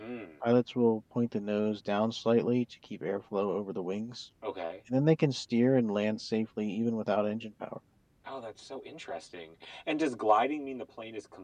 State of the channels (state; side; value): identical; both; correlation 1.00